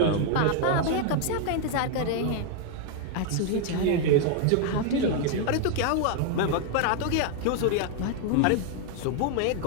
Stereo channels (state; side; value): different; both; correlation 0.00